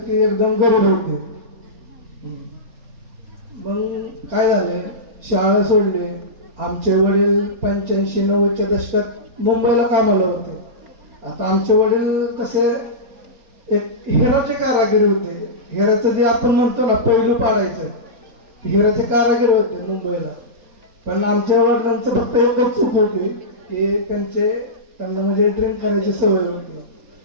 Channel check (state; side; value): late; left; 4.3 ms